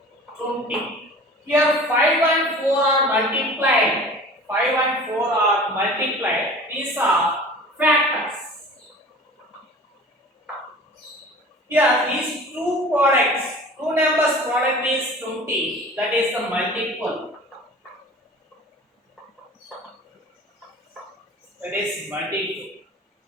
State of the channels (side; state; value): both; normal; correlation 0.42